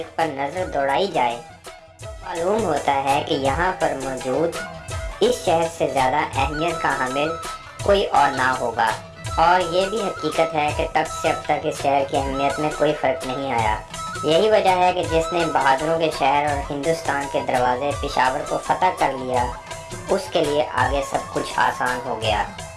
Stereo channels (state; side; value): identical; both; correlation 1.00